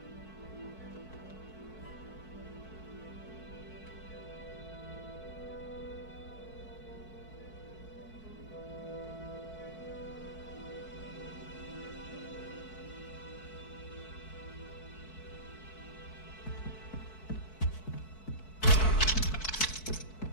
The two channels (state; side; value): late; right; 4.6 ms